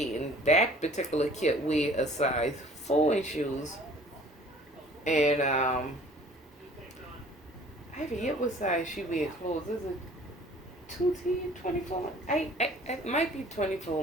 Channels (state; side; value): normal; both; correlation 0.51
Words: that particular kit wear a size 4 in shoes. And I forget what size she wear clothes. Is it 2T, 24? It might be